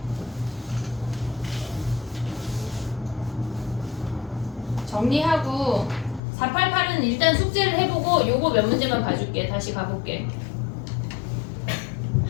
정리하고 488은 일단 숙제를 해보고 요거 몇 문제만 봐줄게. 다시 가볼게.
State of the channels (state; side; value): drops out; right; at 6.2 s